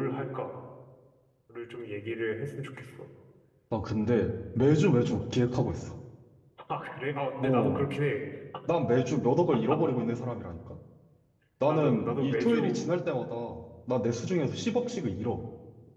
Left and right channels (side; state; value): both; identical; correlation 1.00